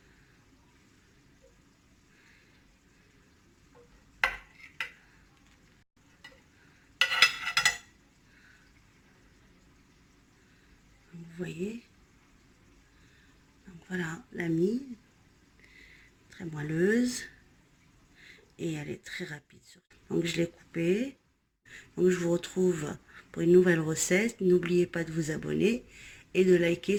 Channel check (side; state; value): both; identical; correlation 1.00